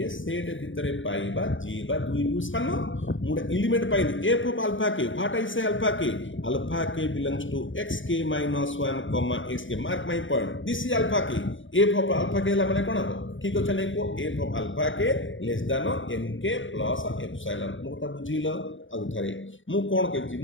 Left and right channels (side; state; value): right; late; 0.56 ms